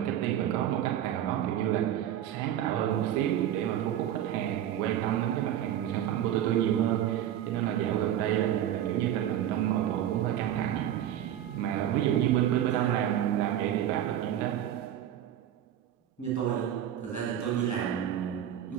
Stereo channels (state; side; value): quieter; left; 11.1 dB